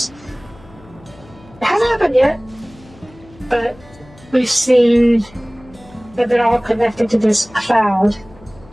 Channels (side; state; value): left; noise; hum, 24 dB below the sound